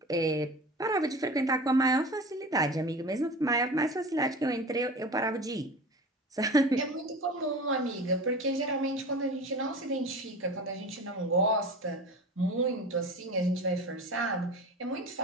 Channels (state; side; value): normal; both; correlation 0.34